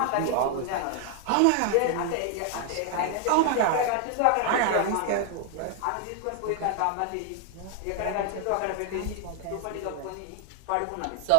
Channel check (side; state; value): both; different; correlation 0.00